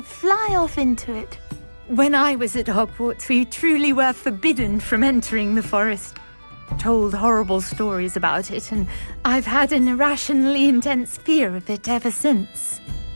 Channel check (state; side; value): inverted; both; correlation -1.00